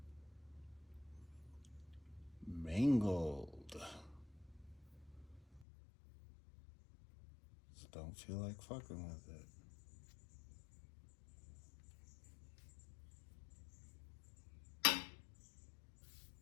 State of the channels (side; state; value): right; drops out; at 5.7 s